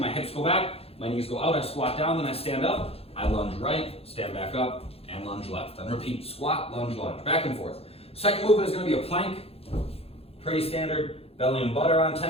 hips go back, my knees go out, I squat down, then I stand up, I lunge right, stand back up, and lunge left. Then repeat, squat, lunge, back and forth. Second movement is gonna be a plank, pretty standard, belly and butt are on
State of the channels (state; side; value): late; right; 0.29 ms